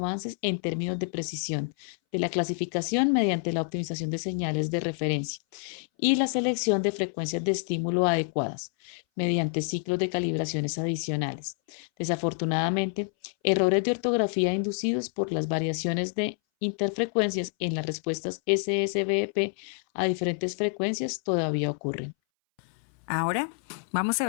en términos de precisión de la clasificación mediante la optimización de señales de referencia y la selección de frecuencias de estímulo adecuadas mediante ciclos de calibraciones adicionales. Desafortunadamente, errores de ortografía inducidos por las variaciones de interfrecuencias en las respuestas SSVP a diferentes frecuencias todavía ocurren. Ahora vamos a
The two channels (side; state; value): right; silent; 59 dB below the other